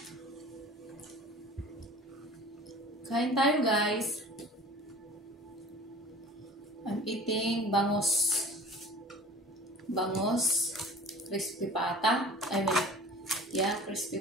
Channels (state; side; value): normal; both; correlation 0.43